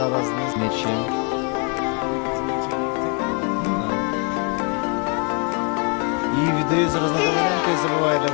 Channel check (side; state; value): right; quieter; 36.0 dB